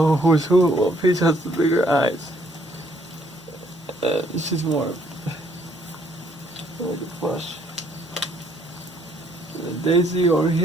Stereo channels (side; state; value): both; normal; correlation 0.66